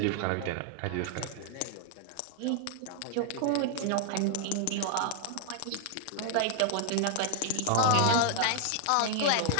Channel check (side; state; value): both; different; correlation 0.00